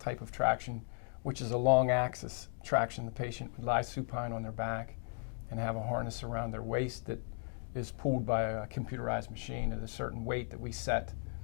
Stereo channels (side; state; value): right; silent; 54 dB below the other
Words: type of traction, which is a long axis traction. The patient would lie supine on their back and have a harness around their waist that is pulled by a computerized machine at a certain weight that we set.